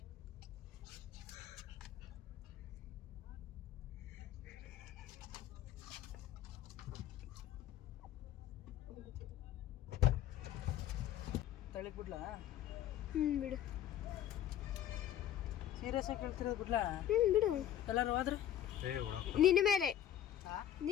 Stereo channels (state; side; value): quieter; right; 11.2 dB